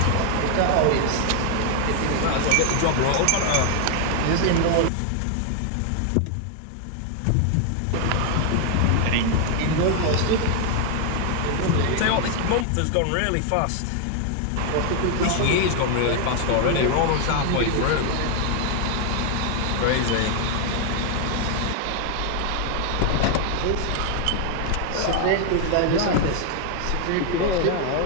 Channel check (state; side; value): different; both; correlation 0.00